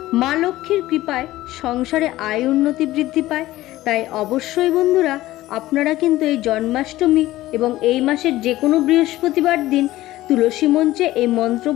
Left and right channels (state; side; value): quieter; right; 16.2 dB